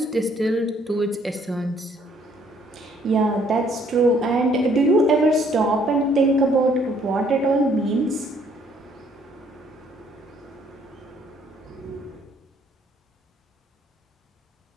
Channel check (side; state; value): both; normal; correlation 0.64